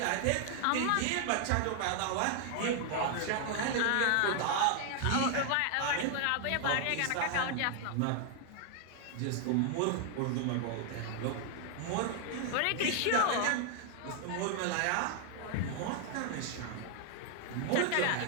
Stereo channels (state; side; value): different; both; correlation 0.00